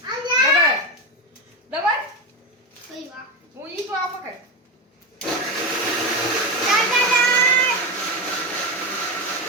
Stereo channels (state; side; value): normal; both; correlation 0.16